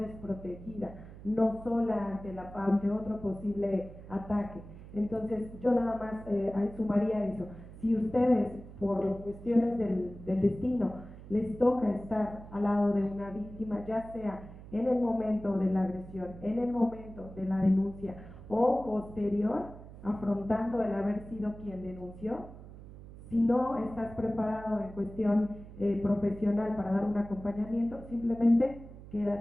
no sola ante otro posible ataque. Entonces, yo nada más sumaría eso. Si ustedes, por cuestiones del destino, les toca estar al lado de una víctima, ya sea en el momento de la agresión, en el momento de la denuncia o posterior, afrontando el haber sido quien denunció, si no estás preparado en cuestión profesional para dar un acompañamiento, simplemente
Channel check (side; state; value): right; noise; hum, 16 dB below the sound